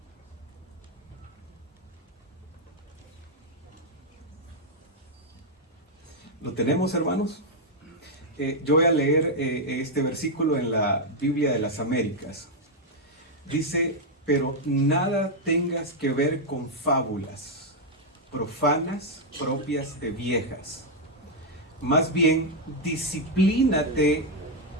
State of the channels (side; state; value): both; normal; correlation -0.01